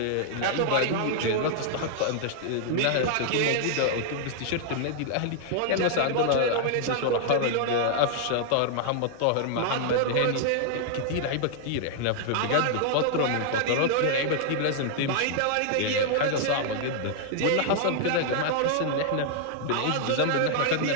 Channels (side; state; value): both; different; correlation 0.00